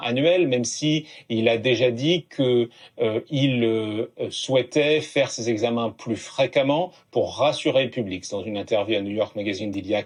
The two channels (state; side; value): identical; both; correlation 1.00